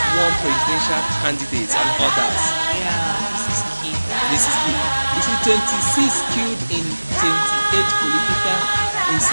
warn presidential candidates and others. Yeah, this is key. You see, 26 killed in 28 political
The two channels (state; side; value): inverted; both; correlation -1.00